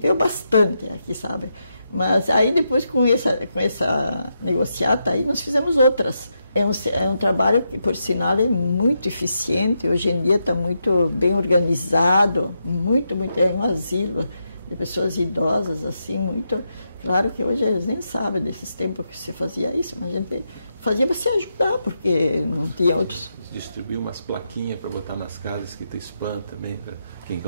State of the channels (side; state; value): both; inverted; correlation -0.83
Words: bastante aqui, sabe? Mas aí depois com essa negociata aí nós fizemos outras. É um trabalho que, por sinal, é muito eficiente. Hoje em dia está muito bem organizado, muito, é um asilo de pessoas idosas, assim, muito... Claro que hoje eles nem sabem desses tempos que se fazia isso, mas a gente fazia para se ajudar, porque não tinha outros... Distribuir umas plaquinhas para botar nas casas, escrito spam também, para quem